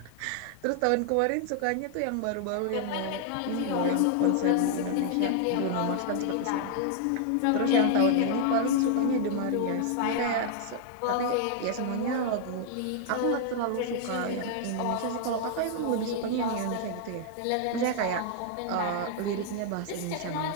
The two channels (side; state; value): both; different; correlation 0.00